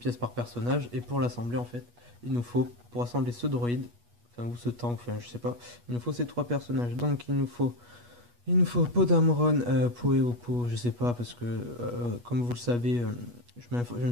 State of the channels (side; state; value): left; late; 8.3 ms